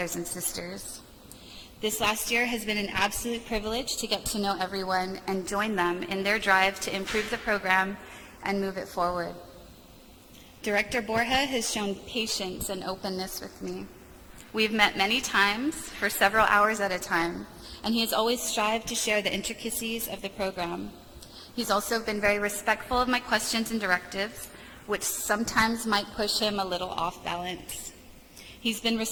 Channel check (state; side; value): identical; both; correlation 1.00